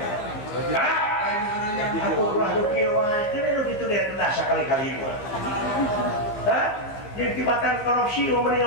Hah? Aku ulah do kieu wae teh nu ditu dia kendah sakali-kali mah. Hah? Jeung tibatan korupsi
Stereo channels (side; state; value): right; late; 14 ms